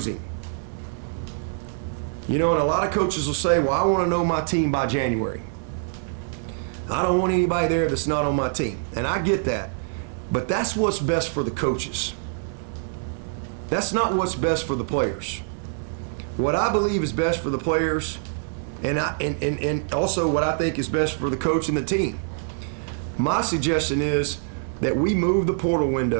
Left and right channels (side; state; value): left; silent; 62 dB below the other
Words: You know, and a lot of coaches will say, well, I want to know my team by January. I don't want anybody there that's not on my team. And I get that. But that's what's best for the coaches. That's not what's best for the players. What I believe is best for the players, and also what I think is best for the coach and the team. My suggestion is that we move the portal